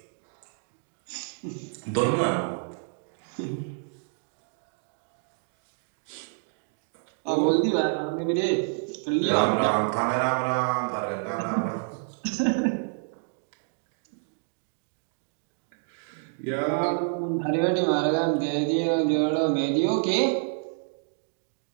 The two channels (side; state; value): left; silent; 59 dB below the other